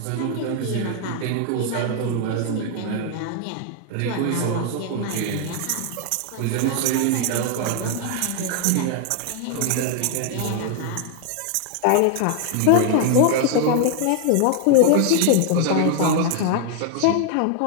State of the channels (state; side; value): different; both; correlation 0.00